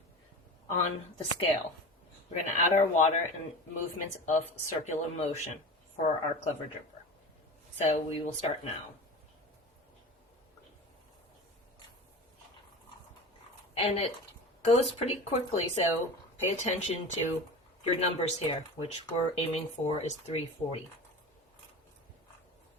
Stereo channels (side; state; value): both; normal; correlation 0.32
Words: on the scale. We're going to add our water and movements of circular motion for our Clever Dripper. So we will start now. And it goes pretty quickly, so pay attention to your numbers here, which we're aiming for is 340.